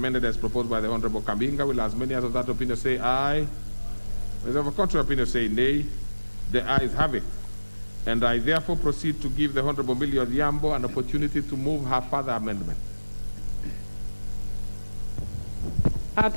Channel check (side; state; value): both; inverted; correlation -1.00